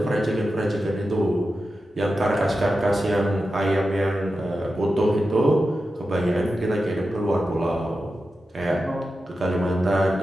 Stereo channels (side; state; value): both; normal; correlation 0.91